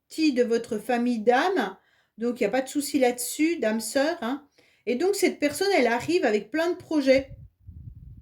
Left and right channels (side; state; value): both; identical; correlation 1.00